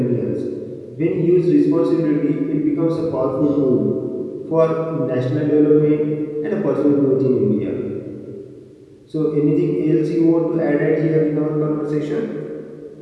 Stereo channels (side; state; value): both; identical; correlation 1.00